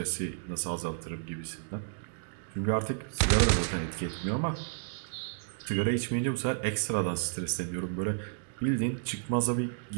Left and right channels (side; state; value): left; silent; digital silence